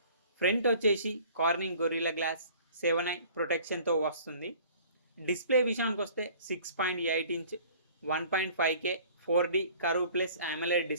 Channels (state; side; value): inverted; both; correlation -0.51